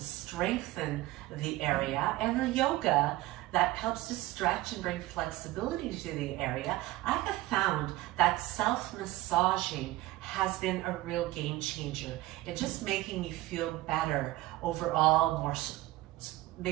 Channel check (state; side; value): quieter; left; 17.7 dB